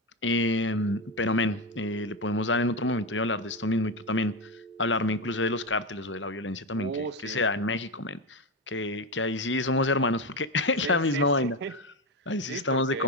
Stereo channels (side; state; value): both; normal; correlation 0.14